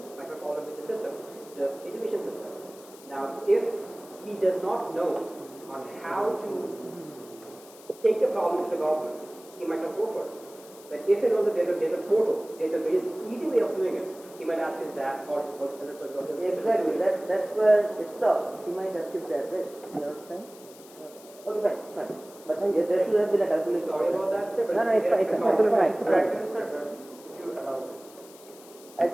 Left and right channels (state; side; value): noise; left; hiss, 21 dB below the sound